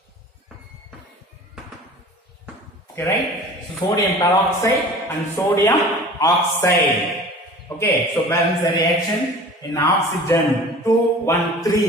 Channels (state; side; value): normal; both; correlation 0.42